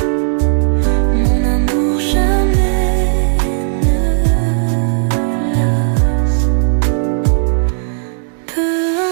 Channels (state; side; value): silent; left; digital silence